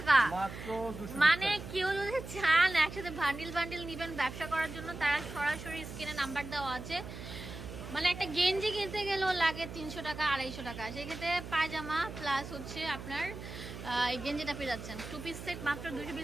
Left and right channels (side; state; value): right; noise; hum, 10 dB below the sound